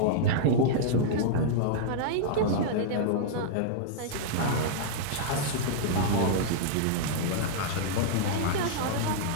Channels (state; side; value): different; both; correlation -0.01